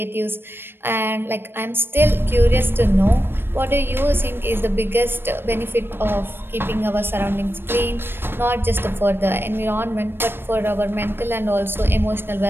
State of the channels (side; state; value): left; late; 0.10 ms